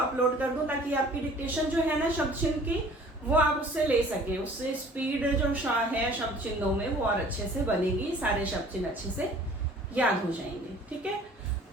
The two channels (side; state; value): both; normal; correlation 0.50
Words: कर दूं ताकि आपकी डिक्टेशन जो है ना शब्द चिन्ह की, वो आप उससे ले सके। उससे स्पीड जो है शब्द चिन्हों में वो और अच्छे से बनेगी, सारे शब्द चिन्ह अच्छे से याद हो जाएंगे, ठीक है।